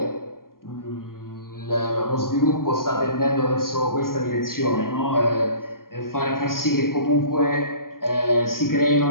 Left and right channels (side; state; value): right; late; 0.91 ms